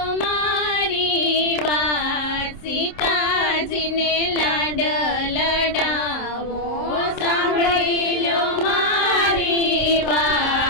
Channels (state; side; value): late; right; 26 ms